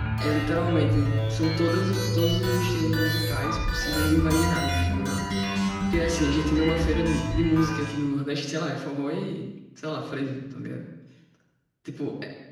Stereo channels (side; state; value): both; identical; correlation 1.00